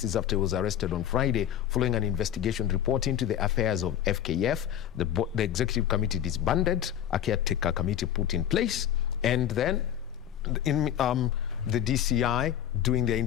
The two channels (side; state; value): right; quieter; 10.4 dB